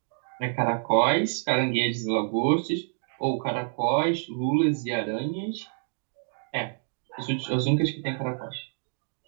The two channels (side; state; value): left; silent; digital silence